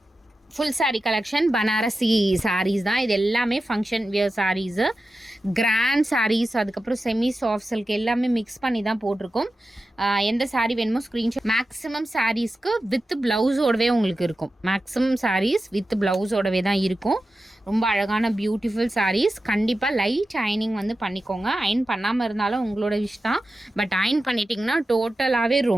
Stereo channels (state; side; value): normal; both; correlation 0.92